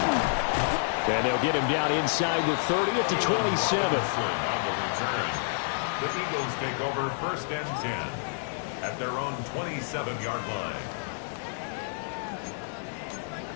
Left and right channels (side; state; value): right; silent; digital silence